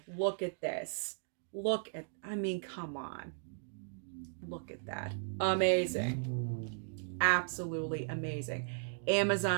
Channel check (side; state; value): left; silent; digital silence